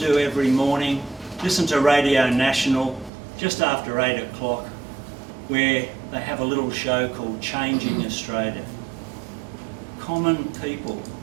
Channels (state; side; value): drops out; left; at 3.1 s